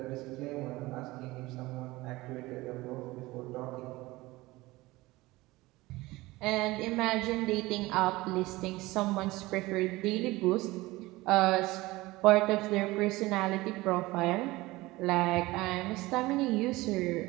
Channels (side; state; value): left; quieter; 20.0 dB